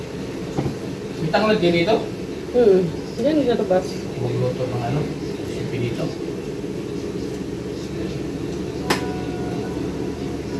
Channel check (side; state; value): both; identical; correlation 1.00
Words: Bitang lang din dito. Yan yung labas. Huwag luto ng ano, sipi dito.